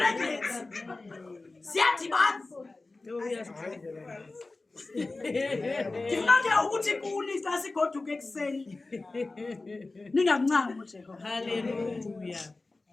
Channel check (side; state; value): right; quieter; 3.3 dB